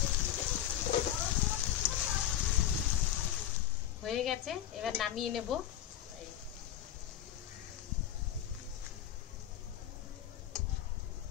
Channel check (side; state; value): right; quieter; 11.1 dB